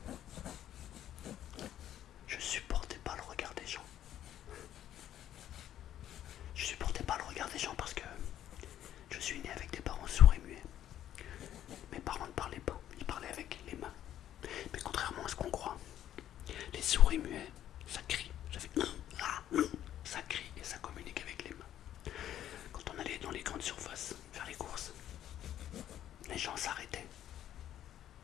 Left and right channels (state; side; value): quieter; right; 11.5 dB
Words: je supportais pas le regard des gens. Je supportais pas le regard des gens parce que je suis né avec des parents sourds et muets. Mes parents ne parlaient pas, ils parlaient avec les mains. Mais contrairement à ce qu'on croit, les sourds et muets, ça crie. Ça crie et ça communique avec les mains. Quand on allait dans les grandes surfaces faire les courses, les gens s'arrêtaient,